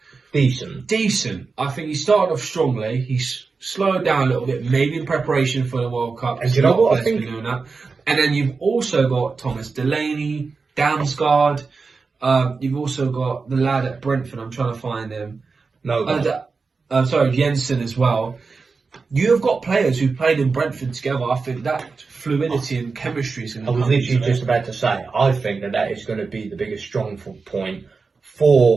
Decent. I think he started off strongly. He's slowed down a little bit, maybe in preparation for the World Cup. And you know what? I think... Doing that. And then you've also got Thomas Delaney, Damsgaard. You've also got the lad at Brentford. I'm trying to find him. Jensen as well. You have got players who played in Brentford together. I think that fluidity and chemistry is going to come. I was literally just about to say, I think that is going to be the biggest strong point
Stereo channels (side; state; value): left; quieter; 4.5 dB